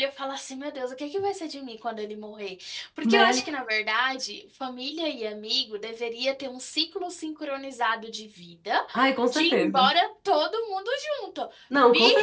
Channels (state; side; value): identical; both; correlation 1.00